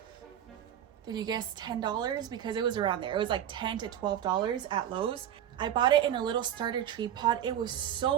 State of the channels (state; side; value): quieter; left; 10.4 dB